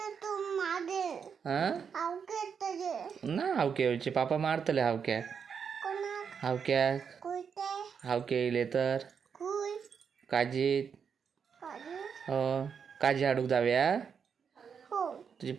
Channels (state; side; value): quieter; left; 6.7 dB